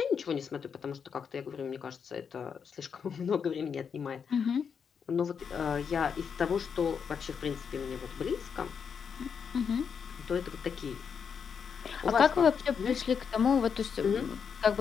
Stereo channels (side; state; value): right; quieter; 6.7 dB